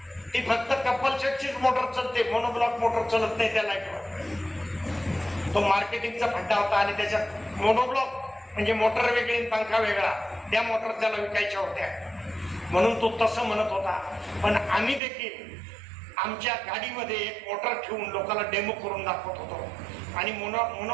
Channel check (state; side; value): drops out; left; at 15.0 s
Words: ती फक्त कपल सेटचीच मोटर चालते, मोनोब्लॉक मोटर चालत नाही त्या लाईटवर. तो मार्केटिंगचा फड्डा होता. आणि त्याच्यात मोनोब्लॉक म्हणजे मोटर वेगळी आणि पंखा वेगळा, त्या मोटर त्याला विकायच्या होत्या, म्हणून तो तसं म्हणत होता. पण आम्ही देखील आमच्या गाडीमध्ये एक मोटर ठेवून लोकांना डेमो करून दाखवत होतो. आणि